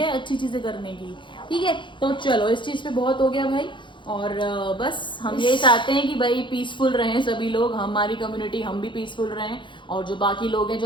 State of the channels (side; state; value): right; late; 0.23 ms